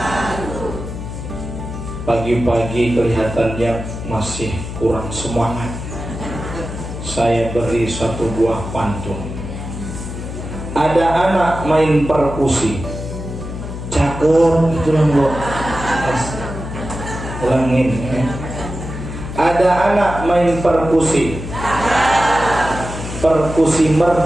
Pagi-pagi kelihatannya masih kurang semangat. Saya beri satu buah pantun. Ada anak main perkusi, cakep gitu lah Bu. Ulangin ya. Ada anak main perkusi, perkusi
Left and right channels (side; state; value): left; noise; hum, 8 dB below the sound